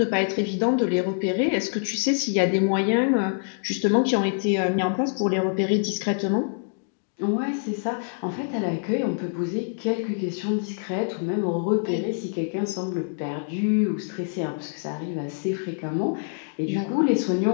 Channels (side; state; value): right; silent; digital silence